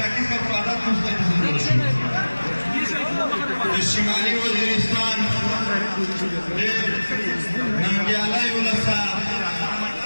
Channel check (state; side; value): inverted; both; correlation -1.00